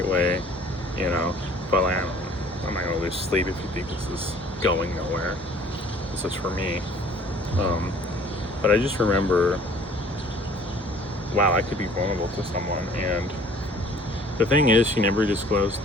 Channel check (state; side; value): normal; both; correlation 0.52